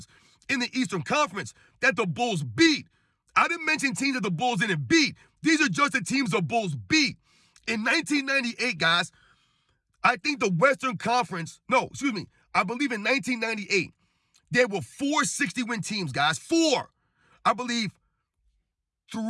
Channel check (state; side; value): identical; both; correlation 1.00